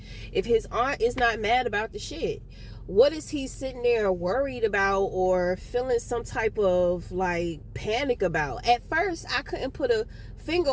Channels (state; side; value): identical; both; correlation 1.00